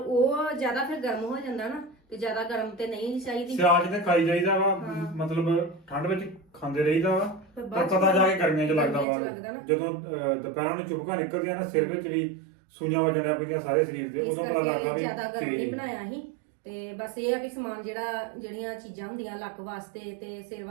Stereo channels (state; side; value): drops out; left; at 9.1 s